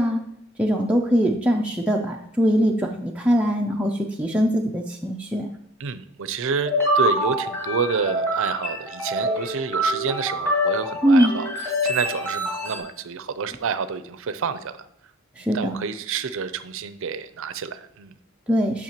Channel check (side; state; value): both; normal; correlation 0.49